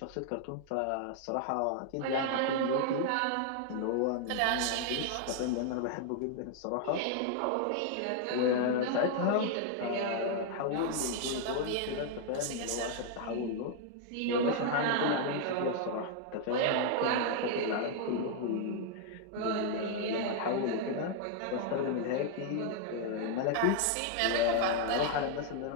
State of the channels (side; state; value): both; different; correlation 0.00